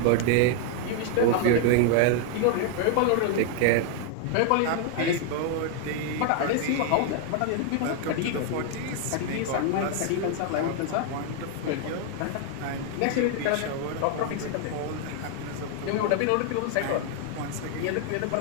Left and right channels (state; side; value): different; both; correlation 0.00